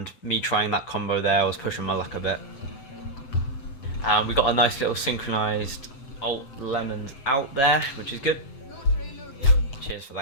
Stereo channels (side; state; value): right; late; 7.9 ms